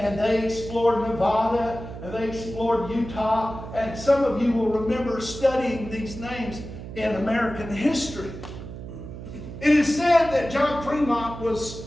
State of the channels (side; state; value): right; noise; hum, 11 dB below the sound